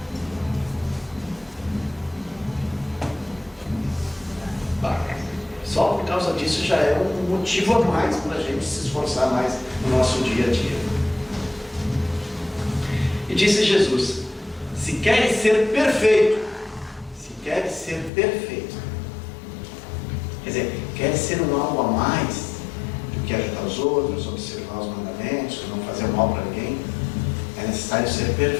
Só por causa disso já é um motivo a mais para a gente se esforçar mais no nosso dia a dia. E disse Jesus, se queres ser perfeito, quer dizer, quer ser um algo a mais do que ajudar os outros, observar os mandamentos, não fazer mal para ninguém, é necessário ser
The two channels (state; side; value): drops out; right; at 18.1 s